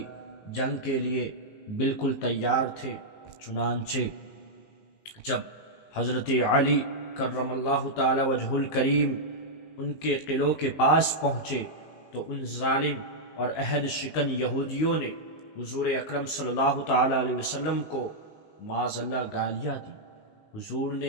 جنگ کے لیے بالکل تیار تھے۔ چنانچہ جب حضرت علی کرم اللہ تعالی وجہ الکریم ان کے قلعوں کے پاس پہنچے تو ان ظالم اور عہد شکن یہودیوں نے حضور اکرم صلی اللہ تعالی علیہ وسلم کو معاذ اللہ گالیاں دی۔ حضور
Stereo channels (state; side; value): late; right; 19 ms